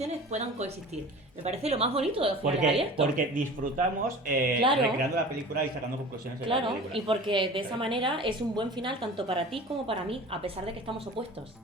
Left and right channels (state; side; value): normal; both; correlation 0.39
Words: puedan coexistir. Me parece lo más bonito de los finales abiertos. Porque disfrutamos Claro. recreando la película y sacando conclusiones de la Claro, película. y porque de esa manera es un buen final tanto para ti como para mí, a pesar de que estamos opuestos.